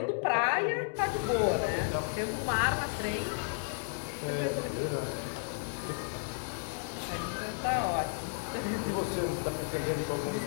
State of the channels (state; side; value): silent; right; digital silence